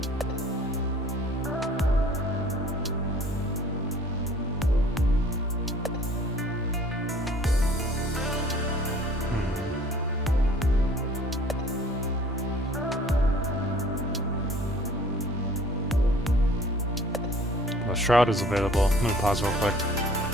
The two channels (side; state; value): both; normal; correlation 0.52